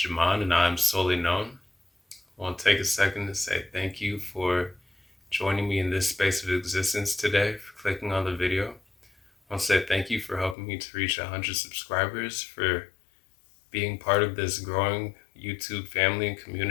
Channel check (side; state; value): right; drops out; at 10.6 s